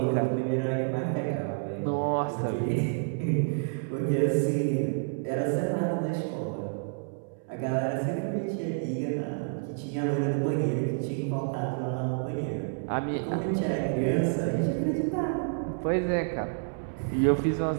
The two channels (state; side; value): silent; left; 59 dB below the other